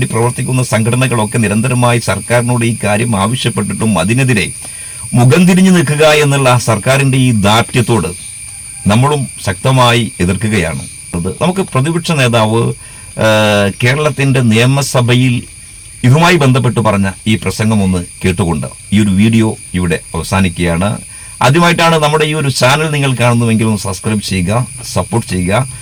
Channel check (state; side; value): identical; both; correlation 1.00